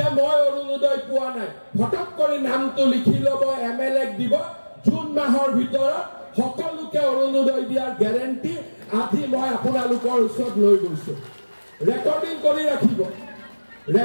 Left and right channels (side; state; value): both; inverted; correlation -1.00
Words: মই অৰুণোদয় পোৱা নাই ফটক কৰি নামটো লিখি ল'ব এমএলএক দিব জুন মাহৰ ভিতৰত সকলোকে অৰুণোদয় দিয়াৰ গ্যাৰেণ্টি আজি মই আপোনালোকৰ ওচৰত লৈ গৈছো ৰেকৰ্ডিং